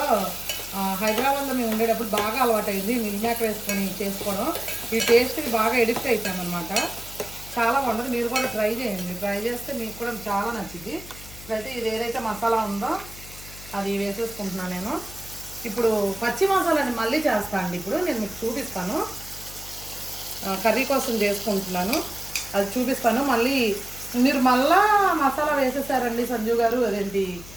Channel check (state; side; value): noise; left; hum, 16 dB below the sound